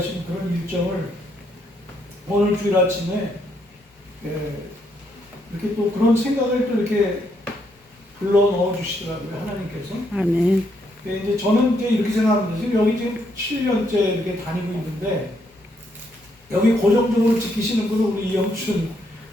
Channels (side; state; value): both; normal; correlation 0.74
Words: 그런 일정을 오늘 주일 아침에 이렇게 또 그런 생각을 또 이렇게 불러 넣어 주시더라고요, 하나님께서. 아멘. 이제 저는 이제 이렇게 생각합니다. 지금 여기 지금 7년째 이렇게 다니고 있는데, 여기 고정적으로 지키시는 분은 우리 이영춘